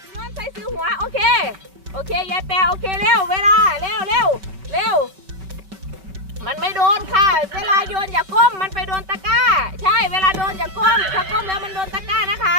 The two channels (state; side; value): late; left; 5.2 ms